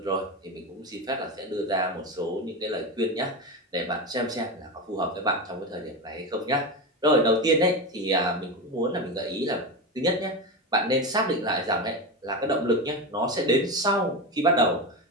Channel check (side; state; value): both; normal; correlation 0.18